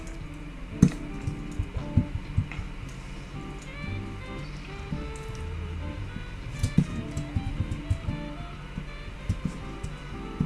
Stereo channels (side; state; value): both; identical; correlation 1.00